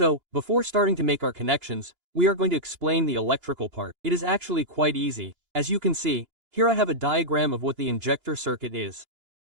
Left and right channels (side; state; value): left; late; 2.9 ms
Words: before starting to make our connections, we are going to explain the electrical part. It is actually quite easy. As you can see, here I have a diagram of what the injector circuit is.